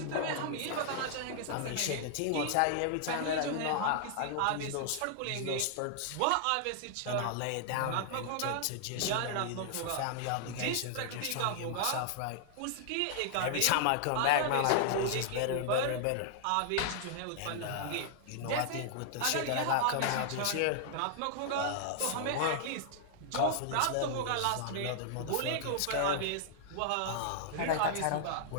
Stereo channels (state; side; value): different; both; correlation -0.01